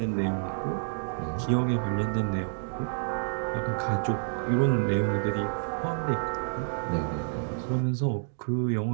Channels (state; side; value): silent; left; digital silence